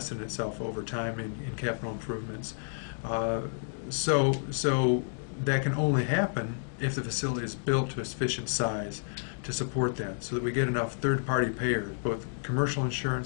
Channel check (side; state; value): right; silent; digital silence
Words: in itself over time in capital improvements. So that can only happen if the facility is built to a sufficient size to support that, so that we get enough third-party payers, both commercial